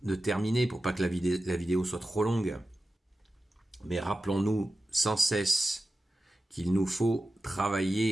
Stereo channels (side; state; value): both; normal; correlation 0.93